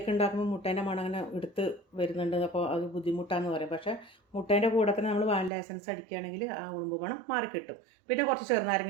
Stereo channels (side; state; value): left; drops out; at 5.5 s